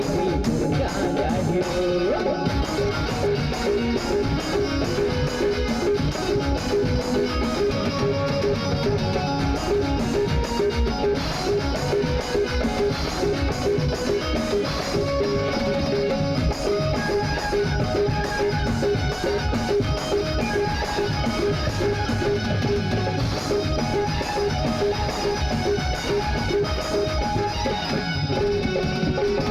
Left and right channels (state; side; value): identical; both; correlation 1.00